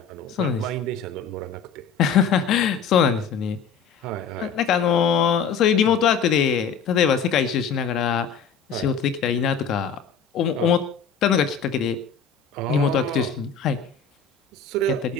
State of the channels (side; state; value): right; quieter; 6.2 dB